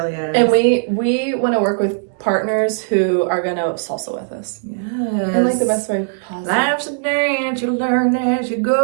is. And we want to work with partners who are going to salsa with us. Yes. And the best way possible. Life's a dance, you learn as you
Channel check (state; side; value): silent; left; digital silence